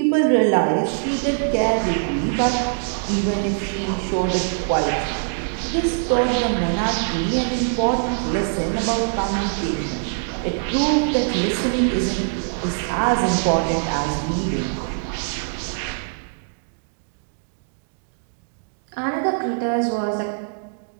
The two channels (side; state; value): left; silent; digital silence